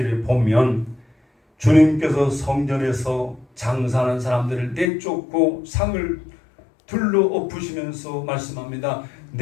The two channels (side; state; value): right; drops out; at 4.9 s